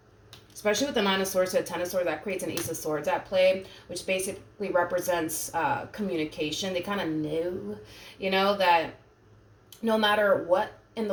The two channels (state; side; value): identical; both; correlation 1.00